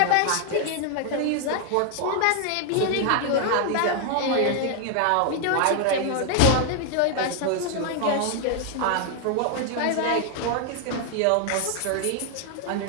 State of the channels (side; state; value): both; different; correlation 0.00